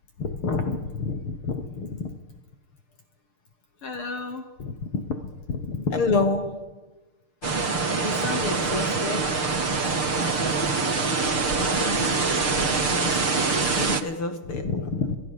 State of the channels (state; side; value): late; right; 6.7 ms